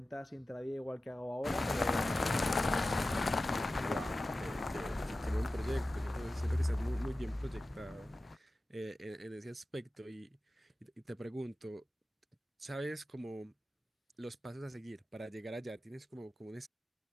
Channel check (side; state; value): both; normal; correlation 0.94